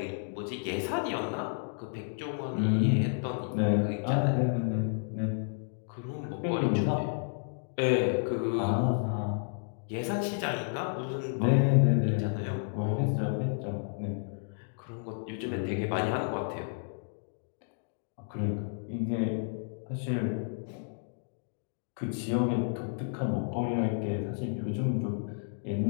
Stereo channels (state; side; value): silent; right; digital silence